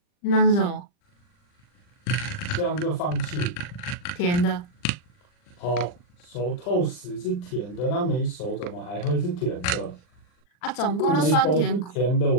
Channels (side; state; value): right; late; 40 ms